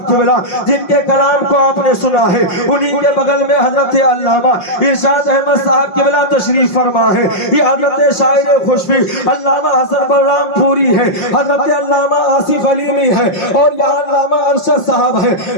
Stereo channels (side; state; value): right; late; 5.6 ms